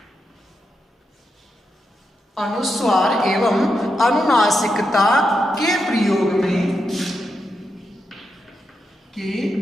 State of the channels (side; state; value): both; normal; correlation 0.85